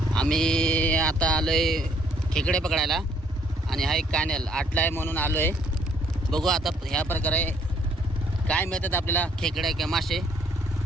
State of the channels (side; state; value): both; normal; correlation 0.65